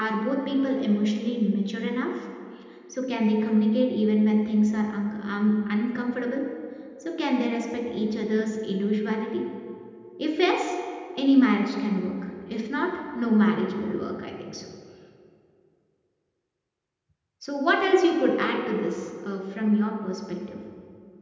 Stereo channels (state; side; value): identical; both; correlation 1.00